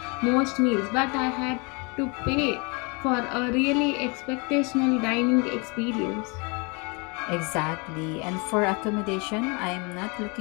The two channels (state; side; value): quieter; right; 30.7 dB